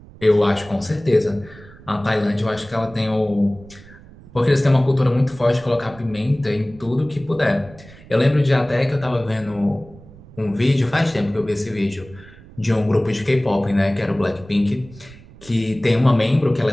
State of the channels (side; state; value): right; noise; rumble, 21 dB below the sound